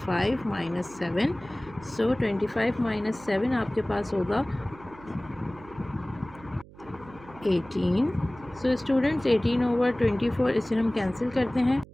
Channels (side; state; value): right; noise; hum, 21 dB below the sound